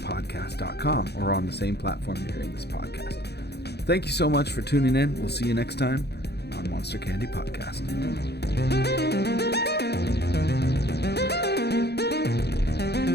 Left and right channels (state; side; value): late; right; 0.48 ms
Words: or on the same platform you're hearing this podcast. Thank you so much for tuning in. We'll see you next time on Monster Candy Podcast.